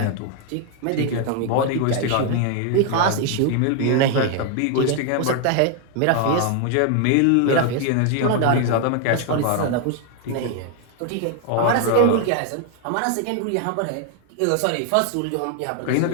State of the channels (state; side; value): different; both; correlation 0.00